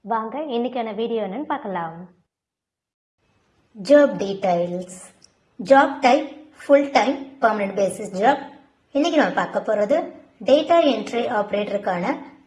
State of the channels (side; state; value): both; identical; correlation 1.00